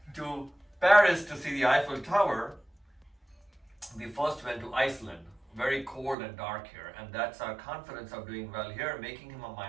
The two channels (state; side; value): drops out; left; at 6.2 s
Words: to Paris to see the Eiffel Tower, we first went to Iceland, very cold and dark here, and that's our confidence of doing well here, making him a